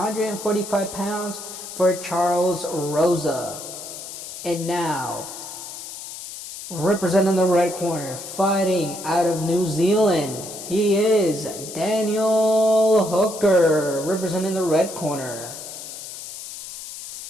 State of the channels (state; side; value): noise; left; hiss, 11 dB below the sound